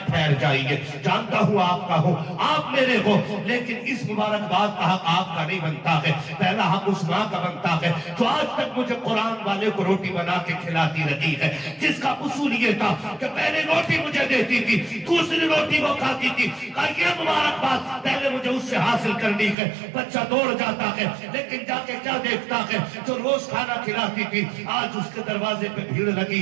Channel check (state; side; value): drops out; left; at 19.6 s